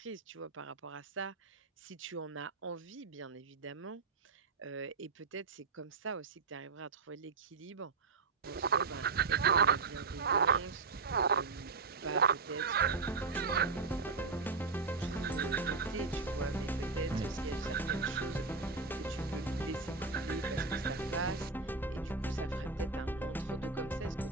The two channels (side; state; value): left; quieter; 4.5 dB